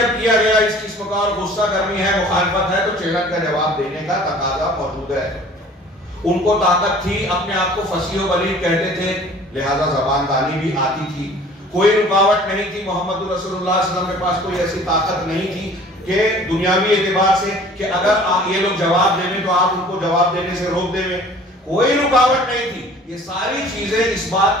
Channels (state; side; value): normal; both; correlation 0.49